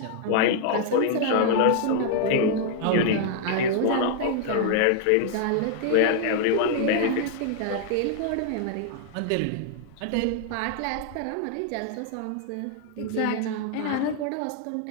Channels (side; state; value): both; different; correlation 0.00